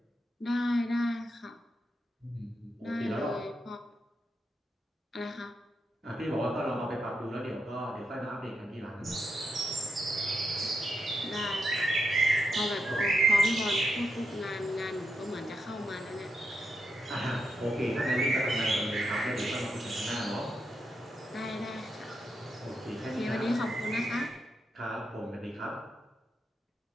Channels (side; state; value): both; normal; correlation 0.83